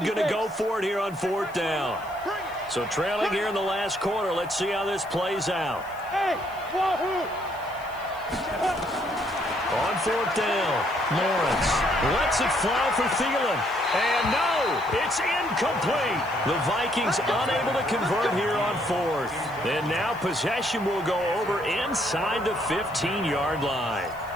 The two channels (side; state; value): left; noise; hiss, 25 dB below the sound